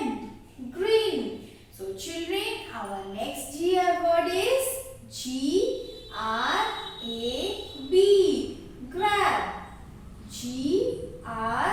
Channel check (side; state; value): both; identical; correlation 1.00